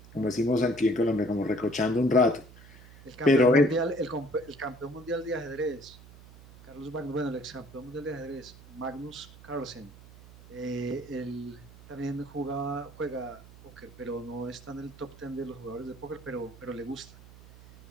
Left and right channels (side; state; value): right; noise; hum, 20 dB below the sound